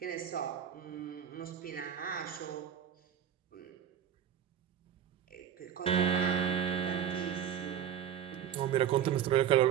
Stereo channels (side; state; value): left; quieter; 9.2 dB